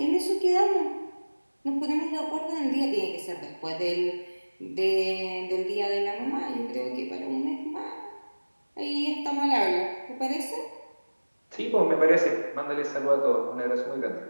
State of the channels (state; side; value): inverted; both; correlation -1.00